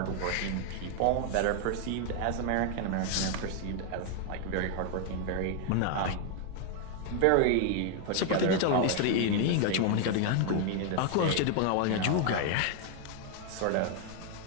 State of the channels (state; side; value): different; both; correlation 0.01